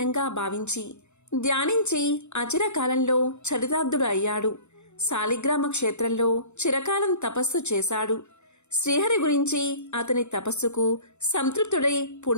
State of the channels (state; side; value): late; right; 0.82 ms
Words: భావించి ధ్యానించి అచిరకాలంలో చరితార్థుడు అయ్యాడు. శాలిగ్రామ క్షేత్రంలో చిరకాలం తపస్సు చేశాడు. శ్రీహరి గురించి అతని తపస్సుకు సంతృప్తుడై